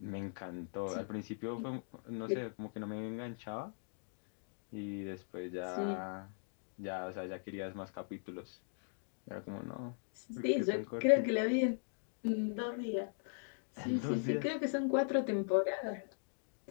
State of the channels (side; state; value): right; silent; digital silence